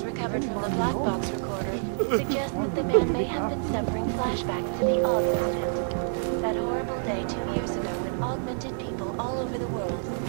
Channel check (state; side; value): silent; left; digital silence